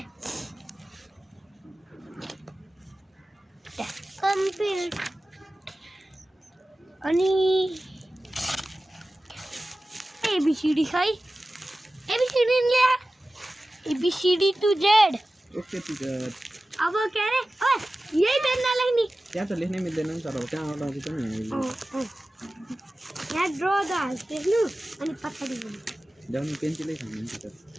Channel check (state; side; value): normal; both; correlation 0.95